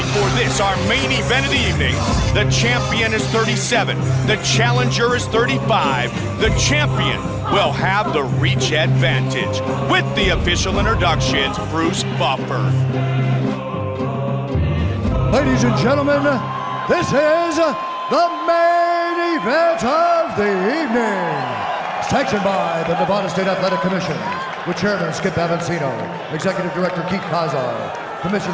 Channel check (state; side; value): identical; both; correlation 1.00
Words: for this, our main event of the evening. The champion is 37. The challenger is 35. The champion will have the reach advantage. With the official introductions, Bruce Buffer. Ladies and gentlemen, this is the main event of the evening. Sanctioned by the Nevada State Athletic Commission, with Chairman Skip Avancino, Executive Director Keith Kazar,